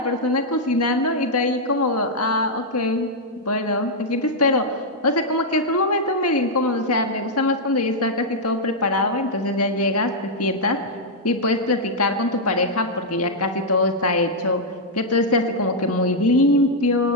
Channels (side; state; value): both; normal; correlation -0.04